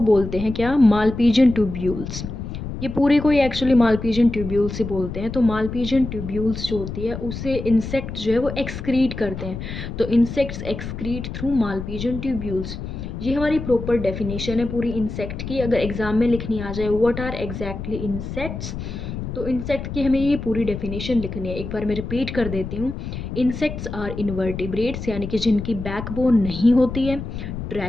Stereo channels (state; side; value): noise; left; rumble, 7 dB below the sound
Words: बोलते हैं क्या, मालपीजियन ट्यूब्यूल्स। ये पूरे को ही एक्चुअली मालपीजियन ट्यूब्यूल्स से बोलते हैं। तो मालपीजियन ट्यूब्यूल्स जो होती है उसे इंसेक्ट जो है वो एक्सक्रीट करते हैं। तो insects excrete through Malpighian tubules. ये हमारी प्रॉपर डेफिनेशन है पूरी इंसेक्ट की। अगर एग्जाम में लिखनी आ जाए व्हाट आर एग्जैक्टली इंसेक्ट्स, तो इंसेक्ट की हमें ये पूरी डेफिनेशन लिखनी है। एक बार मैं रिपीट कर देती हूँ। इंसेक्ट्स आर इनवर्टिब्रेट्स, यानी कि जिनकी बैकबोन नहीं होती है।